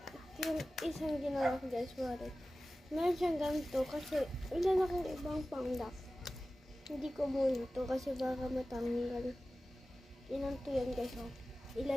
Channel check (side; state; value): both; normal; correlation 0.96